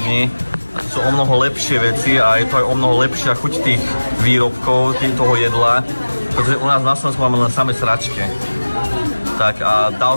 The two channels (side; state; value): both; inverted; correlation -1.00